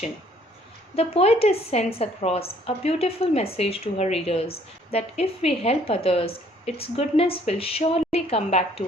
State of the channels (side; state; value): both; normal; correlation 0.61